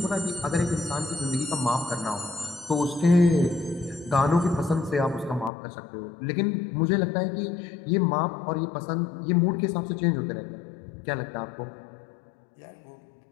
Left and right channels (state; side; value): drops out; right; at 5.5 s